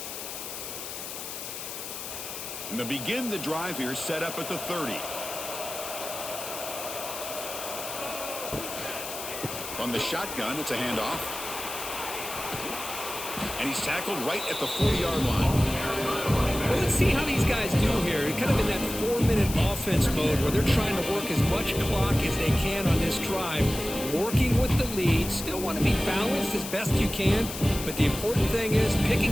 And to begin the drive here, set up at the 30. From the shotgun, it's a handoff. And he's tackled right at the 40-yard line. Well, let's see how these guys do here. Kind of in that 4-minute offense mode where they're trying to work as much clock as they can on this drive, working with the lead. Still want to be balanced as best you can, but the important thing is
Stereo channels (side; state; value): left; noise; hiss, 8 dB below the sound